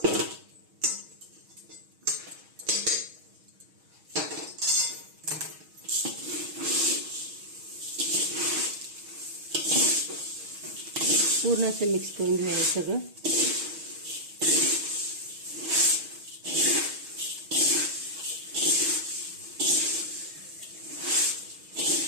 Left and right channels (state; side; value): late; left; 6.3 ms